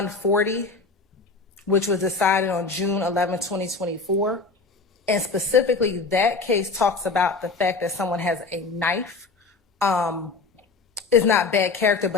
which was decided on June 11, 2024. And specifically, that case talks about the fact that someone has a knife. Is not bad character,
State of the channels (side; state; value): right; quieter; 4.0 dB